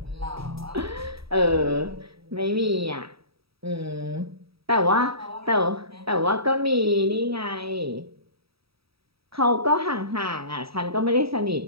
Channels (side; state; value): left; late; 0.77 ms